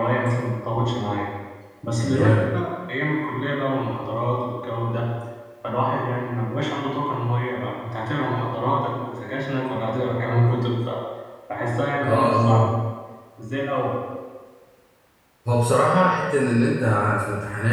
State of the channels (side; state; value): both; identical; correlation 1.00